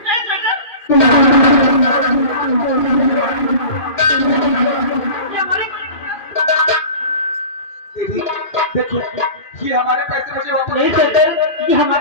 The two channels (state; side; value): late; right; 2.4 ms